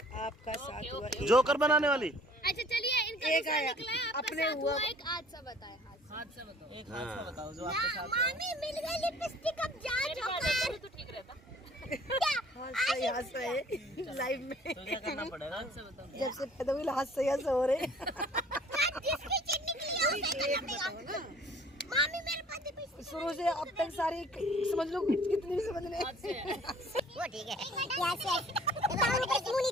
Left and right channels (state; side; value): normal; both; correlation 0.53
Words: आपका साथ हुआ जोकर बनाने वाली। अच्छा चलिए इनका एक दूसरा आया, निकला है, आपका अपने साथ हुआ। हुआ एक हादसा बताए। हादसा बताओ। एक हादसा बताओ जो आपके साथ हुआ। मामी मिल गई लिपस्टिक, अब जा जोकर। तो ठीक रहता हादसा यहाँ से है लाइव में। तो क्या करना पड़ेगा? जब से पैदा हुई हादसा यहाँ से हो रहे। जिसकी चिट निकली है उसे करना पड़ेगा। मामी मेरे पास लिपस्टिक शुरू से अब तक सारी समझ लो कितनी भी समझ ले। वो ठीक है यहाँ से मुंह